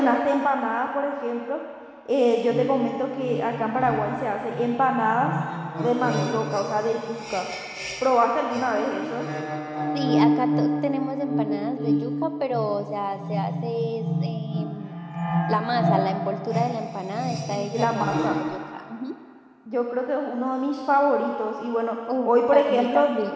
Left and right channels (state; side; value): identical; both; correlation 1.00